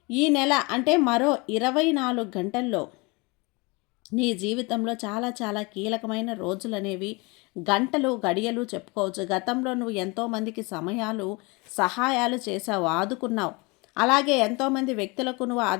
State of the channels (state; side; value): quieter; right; 27.2 dB